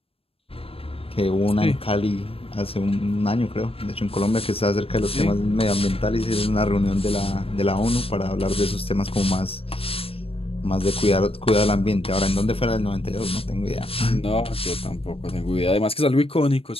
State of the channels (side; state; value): right; late; 0.28 ms